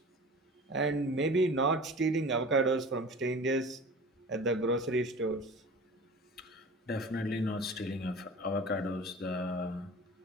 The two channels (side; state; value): both; normal; correlation 0.39